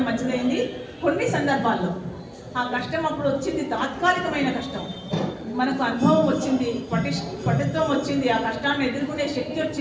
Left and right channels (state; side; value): identical; both; correlation 1.00